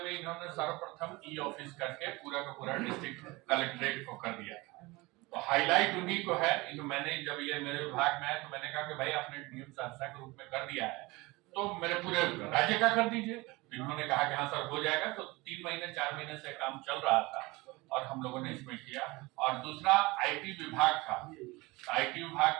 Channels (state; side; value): quieter; left; 22.8 dB